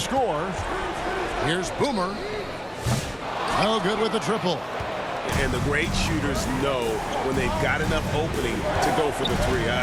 Here's Boomer. No good with the triple. And the great shooters know when they've got enough opening to go for the three.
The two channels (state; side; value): identical; both; correlation 1.00